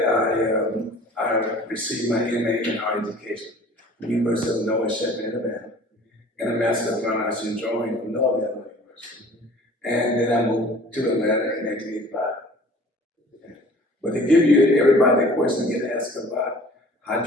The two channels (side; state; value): both; normal; correlation 0.48